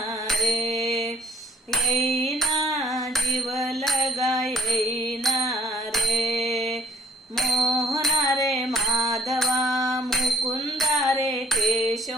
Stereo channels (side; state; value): both; normal; correlation 0.60